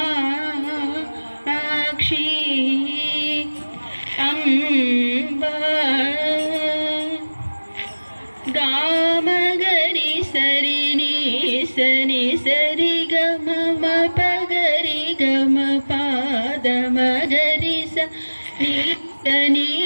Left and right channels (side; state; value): both; inverted; correlation -1.00